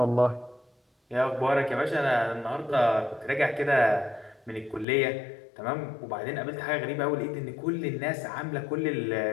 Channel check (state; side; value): drops out; right; at 4.9 s